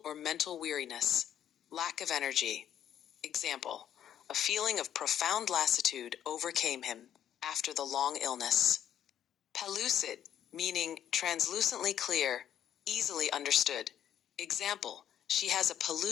or mental weariness, lack of energy. Example, a feeling of profound lassitude overcame him after the long illness. Pellucid, meaning translucently clear, easily understood. Example, she has a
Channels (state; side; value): quieter; right; 10.2 dB